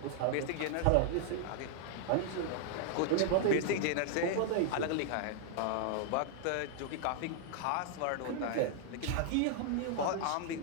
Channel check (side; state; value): both; different; correlation -0.01